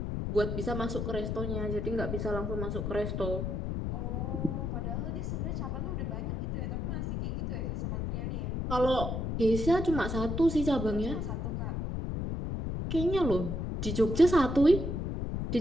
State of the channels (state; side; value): noise; left; rumble, 2 dB below the sound